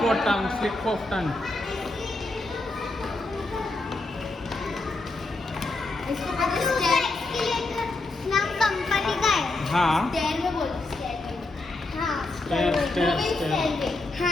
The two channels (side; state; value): right; quieter; 3.0 dB